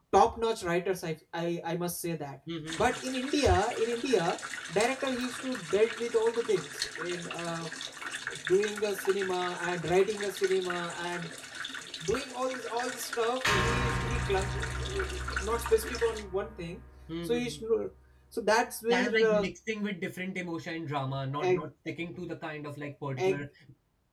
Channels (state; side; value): identical; both; correlation 1.00